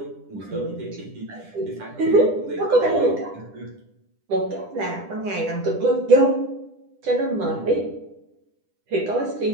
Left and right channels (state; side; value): late; left; 10 ms